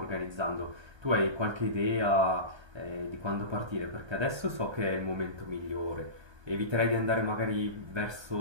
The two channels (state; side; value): late; left; 1.3 ms